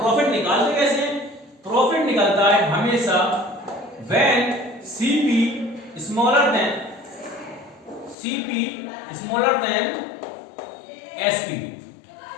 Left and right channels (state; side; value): drops out; right; at 8.2 s